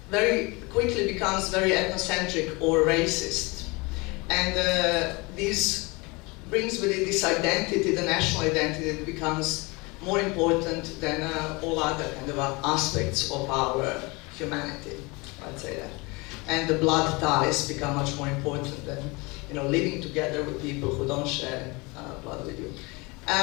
very quickly becomes very ethnocentric or racist. And this brings with it this identity, the national identity, that becomes more important than all other kind of aspects of our humanity, I'd say that. And the blood ties become much more important than, you know, living together with people who don't share blood with you.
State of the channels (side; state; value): right; quieter; 26.1 dB